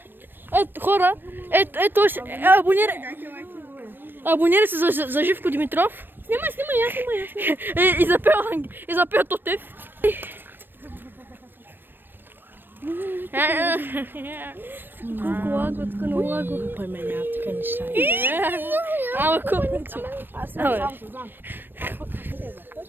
Ето хора, ето абонирай се за Живко Димитров. Снимай. И запел Тотев. Колко лаго, така на лаго. Пой ме няма така неща. Ама колко? Аз съм само се знам.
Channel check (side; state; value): left; late; 0.095 ms